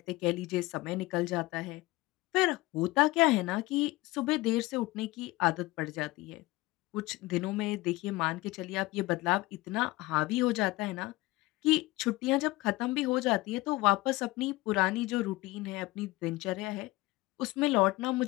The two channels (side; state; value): right; quieter; 20.3 dB